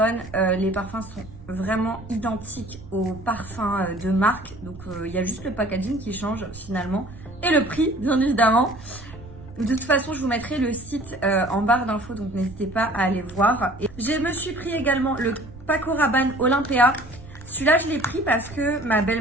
Les parfums sont vraiment identiques aux parfums de marque. Donc, il y a juste le packaging qui change finalement. Et le prix, bien évidemment. De toute façon, je vous mettrai le site en barre d'infos. Donc, n'hésitez pas à aller voir. Et je me suis pris également le Paco Rabanne Olympia. Celui-là, je l'ai pris parce que ma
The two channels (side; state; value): right; noise; rumble, 18 dB below the sound